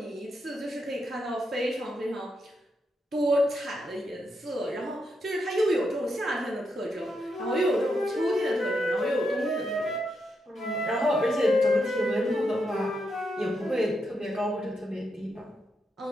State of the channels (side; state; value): both; normal; correlation 0.82